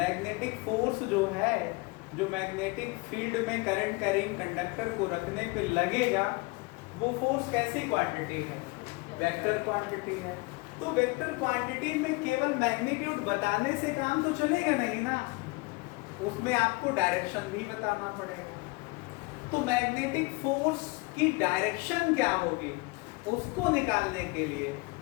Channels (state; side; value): quieter; right; 25.9 dB